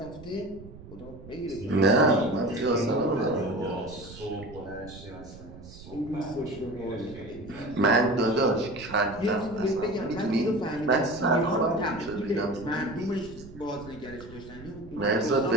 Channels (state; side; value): noise; right; rumble, 17 dB below the sound